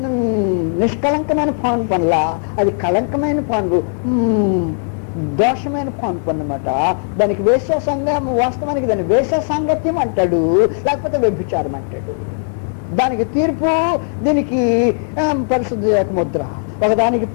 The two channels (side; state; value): right; silent; 66 dB below the other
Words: నిష్కలంకమైన పాన్పు అనలా, అది కళంకమైన పాన్పు, దోషమైన పాన్పు అన్నమాట. దానికి వాస్తవానికి దాన్ని వేశ్య సాంగత్యం అంటాడు, లేకపోతే వ్యభిచారం అంటాడు. దానికి తీర్పు, దీనికి పరిశుద్ధ యొక్క ముద్ర. ఒకదానికి